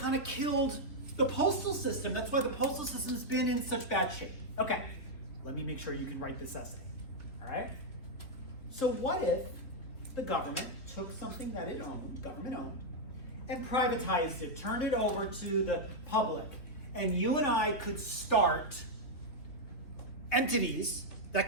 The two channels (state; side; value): late; right; 3.2 ms